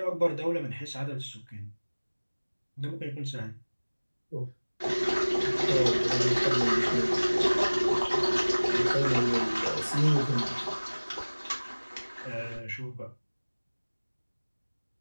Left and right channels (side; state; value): both; inverted; correlation -1.00